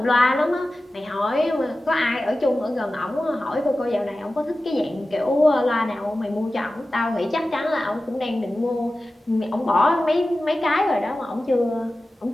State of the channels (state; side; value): normal; both; correlation 0.95